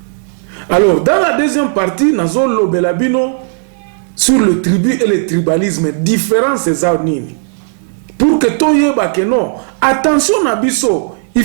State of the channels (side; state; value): left; silent; digital silence